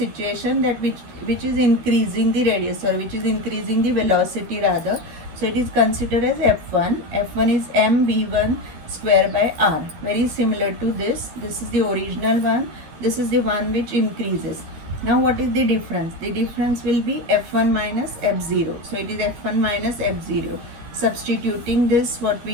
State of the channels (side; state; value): left; late; 12 ms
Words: that which is increasing the radius, or which is increasing the velocity rather. So it is considered as F1. F1 is mv1 square by r. Very similar to this. This is the original one. This is the one which increases. Now what is the difference? The difference will be F1 minus F0. So it is F1 minus F0. Substituting this, what